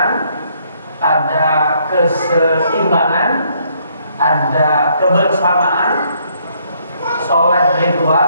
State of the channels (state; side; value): inverted; both; correlation -0.69